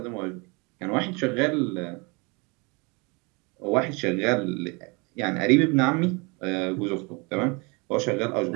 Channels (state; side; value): quieter; left; 29.1 dB